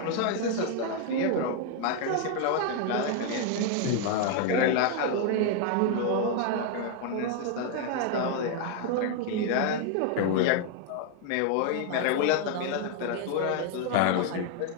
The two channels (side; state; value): both; different; correlation 0.00